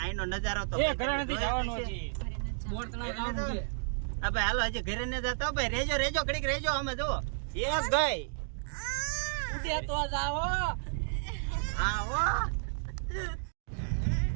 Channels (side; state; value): left; silent; digital silence